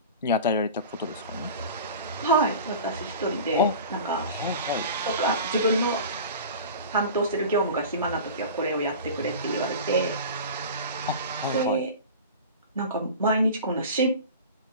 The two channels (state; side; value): inverted; both; correlation -0.35